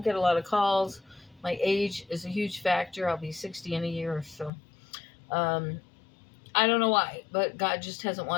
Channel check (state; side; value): drops out; right; at 4.5 s